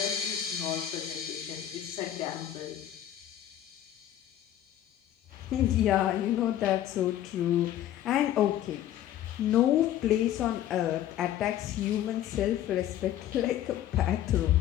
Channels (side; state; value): right; quieter; 11.9 dB